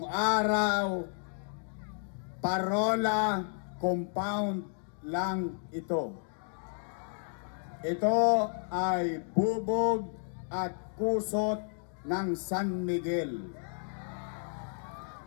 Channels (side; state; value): right; silent; digital silence